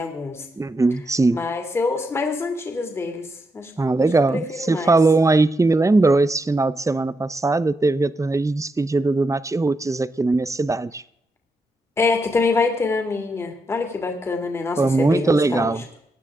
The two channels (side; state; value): both; normal; correlation 0.83